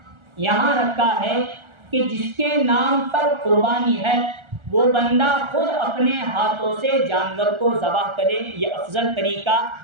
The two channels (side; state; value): left; late; 1.4 ms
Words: یہاں رکھا ہے کہ جس کے نام پر قربانی ہے وہ بندہ خود اپنے ہاتھوں سے جانور کو ذبح کرے، یہ افضل طریقہ